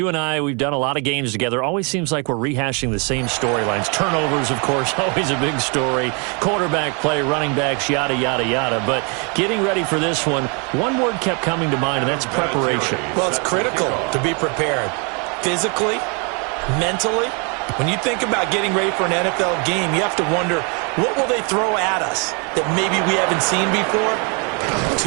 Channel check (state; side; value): quieter; left; 34.4 dB